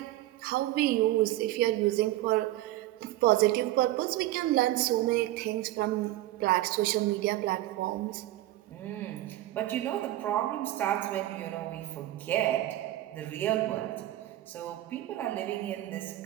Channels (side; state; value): left; quieter; 15.6 dB